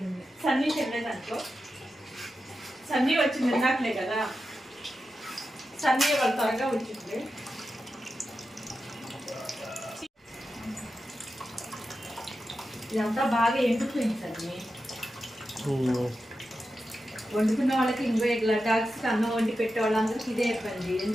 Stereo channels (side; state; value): both; normal; correlation 0.90